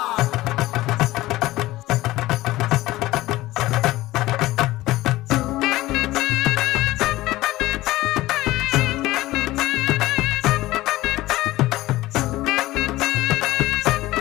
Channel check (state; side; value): quieter; right; 17.4 dB